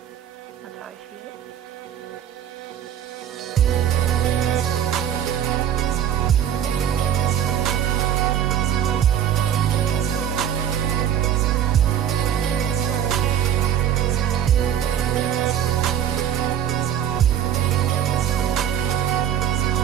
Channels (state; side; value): quieter; left; 9.7 dB